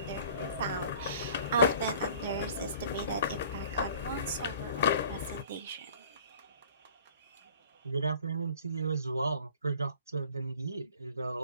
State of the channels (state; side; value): inverted; both; correlation -0.49